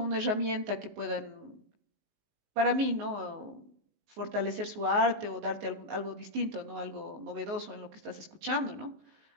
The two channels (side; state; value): left; late; 19 ms